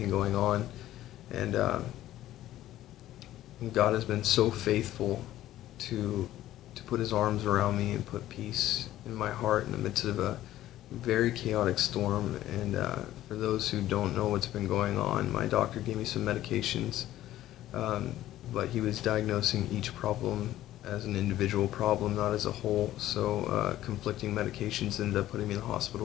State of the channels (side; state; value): right; quieter; 13.9 dB